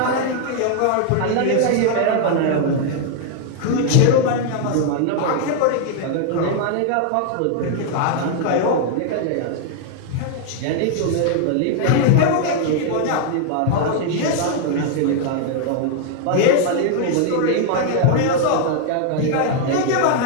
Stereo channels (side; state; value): both; different; correlation 0.00